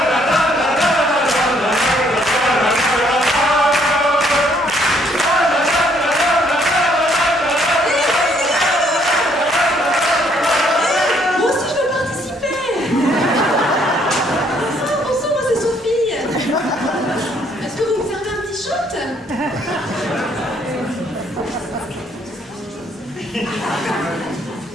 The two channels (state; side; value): normal; both; correlation 0.67